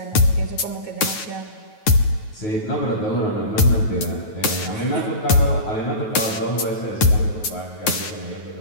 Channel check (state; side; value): late; right; 9.3 ms